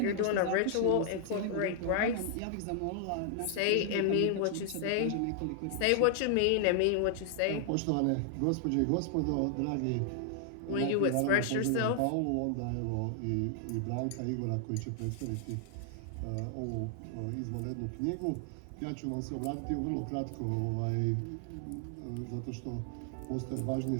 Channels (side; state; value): both; different; correlation 0.00